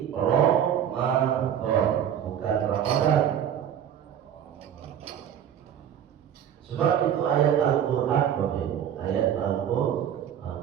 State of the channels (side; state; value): left; quieter; 9.5 dB